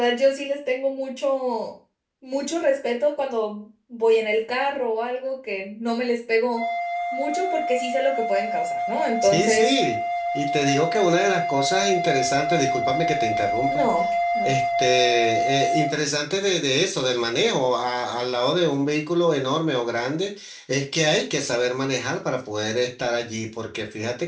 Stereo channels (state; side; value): identical; both; correlation 1.00